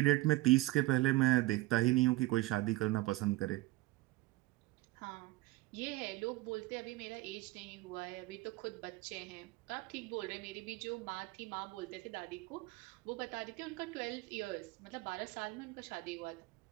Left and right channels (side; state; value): left; quieter; 19.6 dB